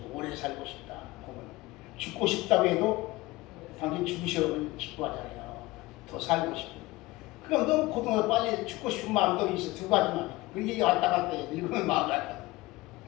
오래 살고 싶다. 보면 죽고 싶다고 해도 당신 죽으셔면 기뻐하잖아요. 더 살고 싶고. 그럼 너무 고통을 빨리 죽고 싶은 마음도 있어. 두 가지만. 그게 왔다 갔다 해요. 늙으면 마음이 왔다.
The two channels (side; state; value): right; quieter; 20.1 dB